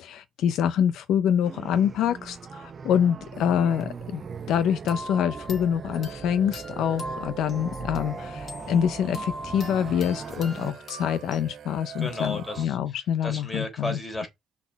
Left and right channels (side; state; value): right; quieter; 7.4 dB